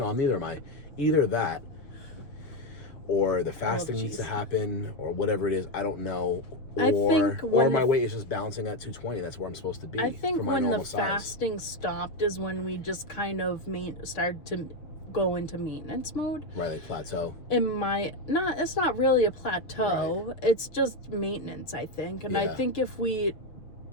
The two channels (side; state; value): right; late; 6.5 ms